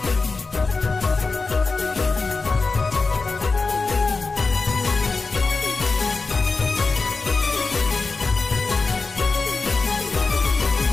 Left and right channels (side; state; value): right; quieter; 4.0 dB